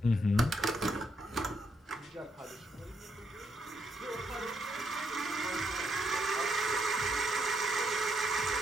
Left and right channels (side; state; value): both; normal; correlation 0.76